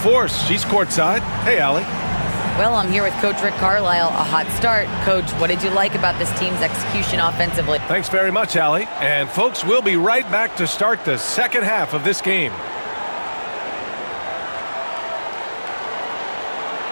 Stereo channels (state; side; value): inverted; both; correlation -1.00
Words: She's courtside. Hey, Allie. Well, I'm here with Coach Rick Carlisle. A hot start. Coach, what did you like about this team's execution offensively? Thanks very much, Allie. And folks, we'll be right back to start the 2nd half of this game.